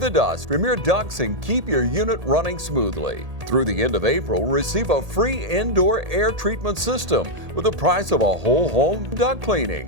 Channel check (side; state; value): left; late; 1.8 ms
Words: dust from your ducts and keep your unit running smoothly. Through the end of April, receive a free indoor air treatment system with the price of a whole home duct